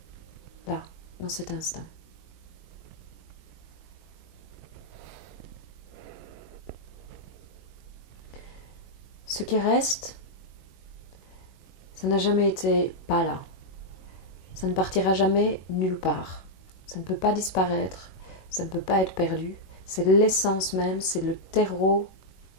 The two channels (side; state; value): right; late; 21 ms